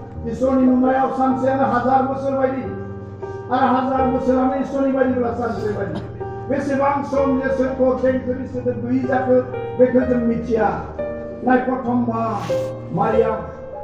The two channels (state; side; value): identical; both; correlation 1.00